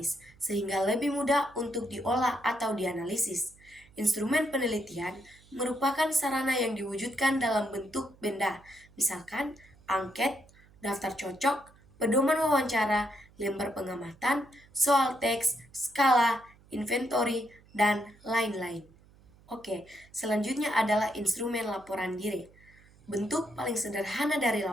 sehingga lebih mudah untuk diolah atau dianalisis. Instrumen penelitian merupakan sarana yang diwujudkan dalam bentuk benda, misalkan angket, daftar cocok, pedoman wawancara, lembar pengamatan, soal teks, skala, inventory, dan lain-lain. Oke, selanjutnya adalah instrumen laporan diri. Bentuk paling sederhana dari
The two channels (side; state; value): right; noise; hum, 27 dB below the sound